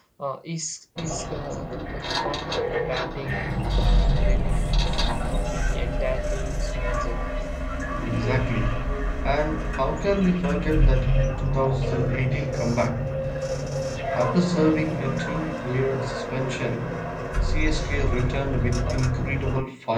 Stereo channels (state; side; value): identical; both; correlation 1.00